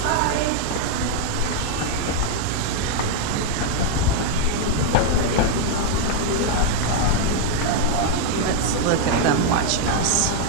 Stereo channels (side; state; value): both; different; correlation 0.00